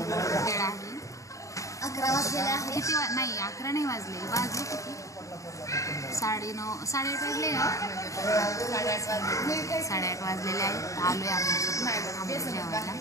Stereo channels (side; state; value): right; late; 0.16 ms